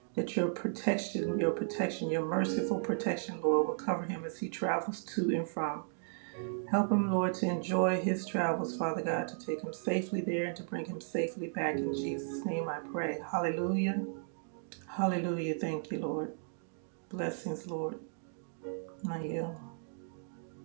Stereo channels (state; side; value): silent; left; digital silence